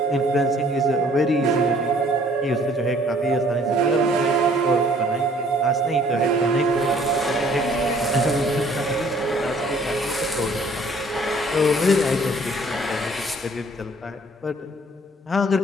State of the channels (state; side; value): normal; both; correlation 0.58